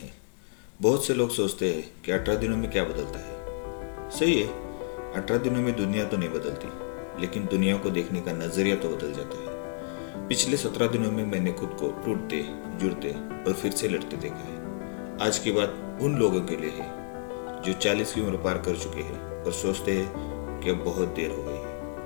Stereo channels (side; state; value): right; silent; 58 dB below the other